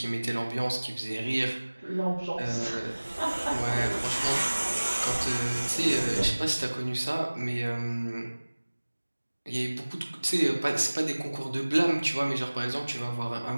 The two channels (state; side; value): inverted; both; correlation -1.00